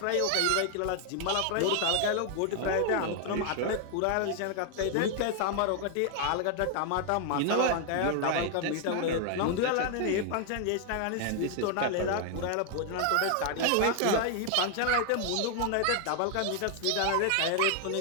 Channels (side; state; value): both; different; correlation 0.00